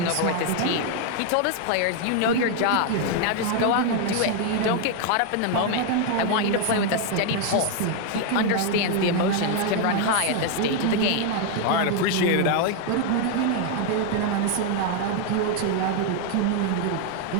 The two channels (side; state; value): both; different; correlation 0.01